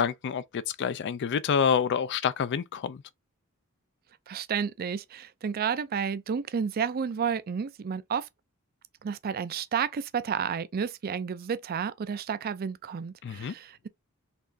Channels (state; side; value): normal; both; correlation -0.04